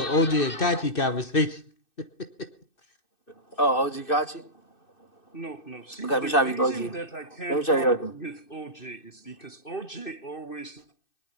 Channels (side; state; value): right; late; 2.6 ms